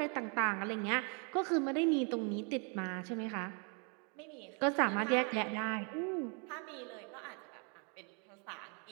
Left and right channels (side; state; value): left; quieter; 36.3 dB